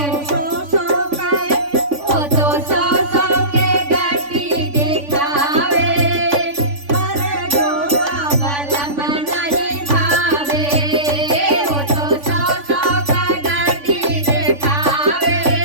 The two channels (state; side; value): late; left; 3.5 ms